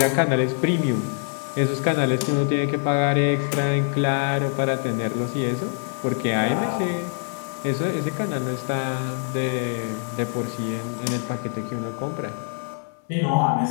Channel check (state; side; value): silent; right; 62 dB below the other